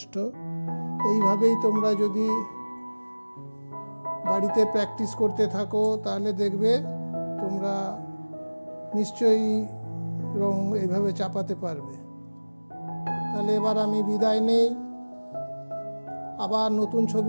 এইভাবেই তোমরা যদি বাড়িতে প্র্যাকটিস করতে থাকো তাহলে দেখবে তোমরা নিশ্চয়ই রং এইভাবে চাপাতে পারবে। তাহলে এবার আমি বিদায় নেই, আবার নতুন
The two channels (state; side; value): inverted; both; correlation -1.00